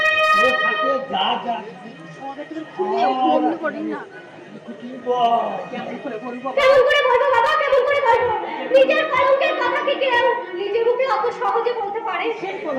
যা যা কেমন করে বলবো বাবা, কেমন করে বলবো? নিজের কলঙ্কের কথা কি কেউ নিজের মুখে অত সহজে বলতে পারে?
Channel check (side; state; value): both; identical; correlation 1.00